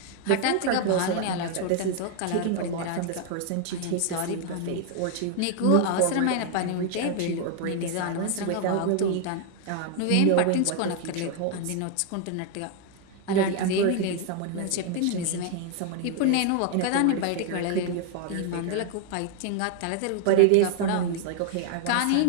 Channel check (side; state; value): both; different; correlation 0.00